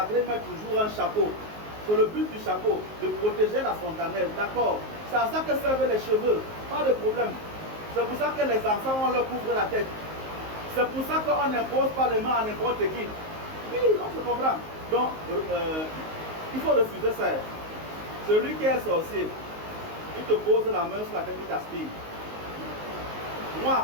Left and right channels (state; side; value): late; left; 19 ms